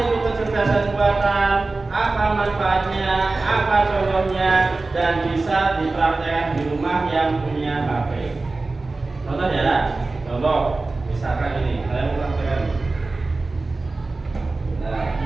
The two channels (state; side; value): quieter; left; 3.4 dB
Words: itu kecerdasan buatan, apa manfaatnya, apa contohnya, dan bisa dipraktekkan di rumah yang punya HP. Contoh ya, contoh misalkan ini, saya mau praktekkan. Nah,